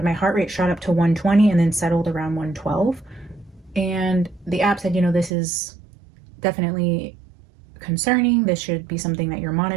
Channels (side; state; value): left; drops out; at 5.3 s